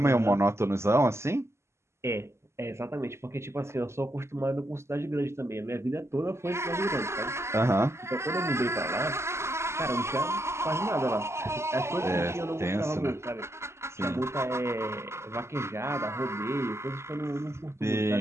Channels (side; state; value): left; late; 0.13 ms